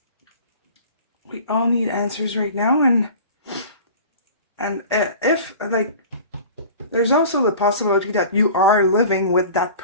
We all need answers right now. And if, like, there's also the possibility that you are living with that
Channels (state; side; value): inverted; both; correlation -0.41